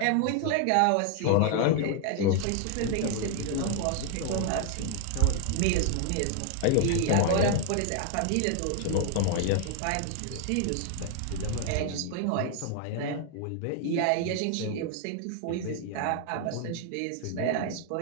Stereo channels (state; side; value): different; both; correlation 0.00